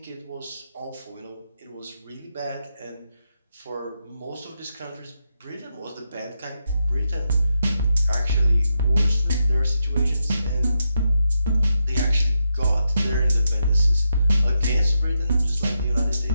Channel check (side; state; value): both; inverted; correlation -0.84